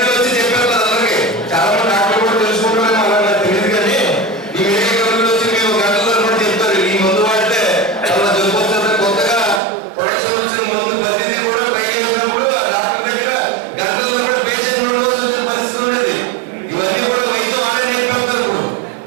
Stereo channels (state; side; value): drops out; left; at 9.6 s